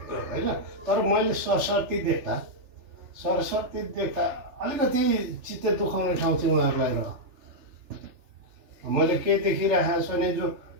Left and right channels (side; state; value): left; late; 3.4 ms